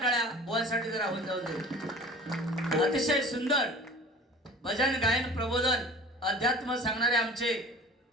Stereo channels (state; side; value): normal; both; correlation 0.42